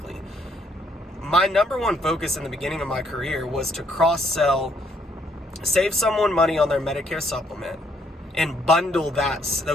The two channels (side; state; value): both; normal; correlation 0.69